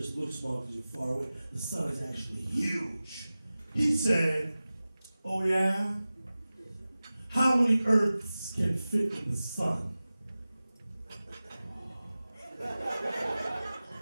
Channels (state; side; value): inverted; both; correlation -0.97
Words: looks small because you're far away. The sun is actually huge. He said, oh yeah? How many Earths can fit in the sun?